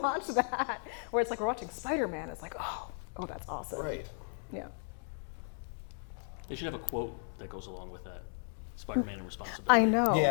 that? Where it's like, we're watching Spider-Man. It's like, oh, that's awesome. Right. Yeah. They should have a quote that goes along with that. Spider-Man and responsibility. I know.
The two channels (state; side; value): silent; right; 55 dB below the other